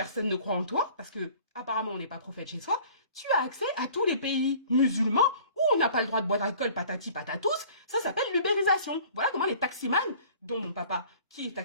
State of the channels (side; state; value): both; inverted; correlation -0.49